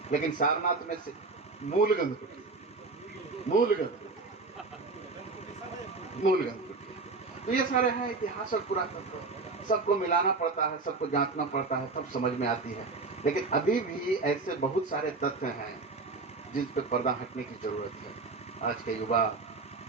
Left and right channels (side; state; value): left; quieter; 3.8 dB